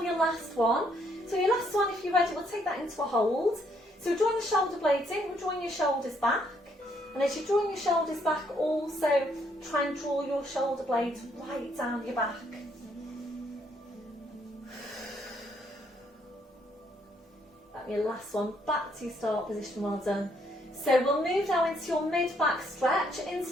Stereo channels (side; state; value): both; normal; correlation 0.70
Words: your last one. So your last one, if you're ready, we'll take that into a hold. So we're drawing the shoulder blades in, we're drawing your shoulders back. And as you're drawing your shoulders back, also try and draw your shoulder blades right down your back. That's your last one, back to your start position, well done. So we'll move now into your mid-back stretch,